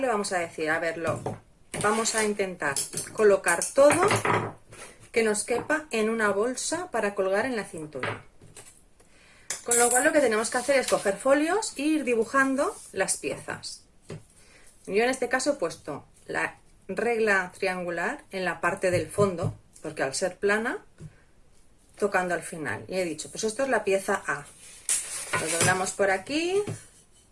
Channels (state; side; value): identical; both; correlation 1.00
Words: y vamos a decir, a verlo. Vamos a intentar colocar todo que nos quepa en una bolsa para colgar en la cintura. Con lo cual lo que tenemos que hacer es coger folios e ir dibujando las piezas. Yo en este caso he puesto la regla triangular en la parte del fondo, porque al ser plana, tocando al final. Y he dicho, pues esto es la pieza A. Lo doblamos por aquí